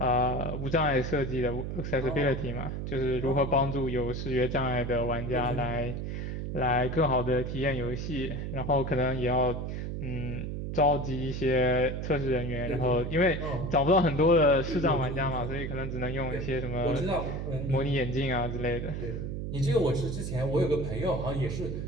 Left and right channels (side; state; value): right; noise; hum, 4 dB below the sound